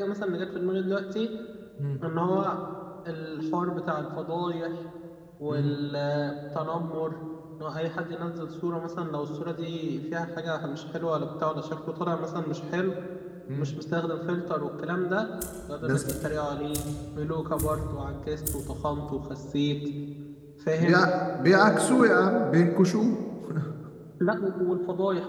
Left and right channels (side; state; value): both; identical; correlation 1.00